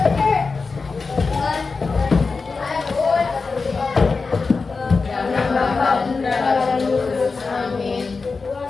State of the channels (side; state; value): right; quieter; 4.4 dB